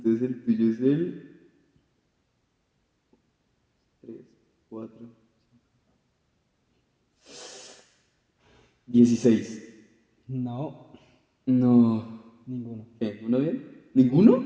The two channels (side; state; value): both; identical; correlation 1.00